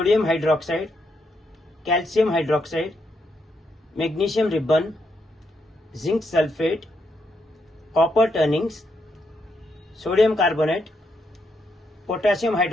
hydroxide, calcium hydroxide, magnesium ribbon, zinc sulfate, copper turnings, sodium carbonate, potassium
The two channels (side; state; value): both; normal; correlation 0.79